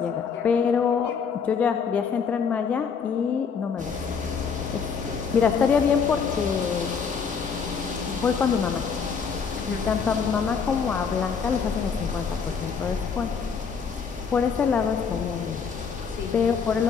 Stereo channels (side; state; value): right; quieter; 6.1 dB